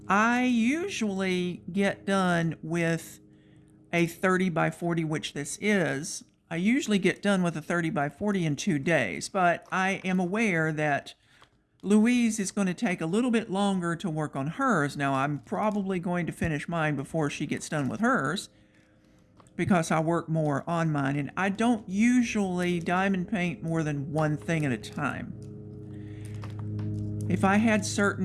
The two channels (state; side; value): identical; both; correlation 1.00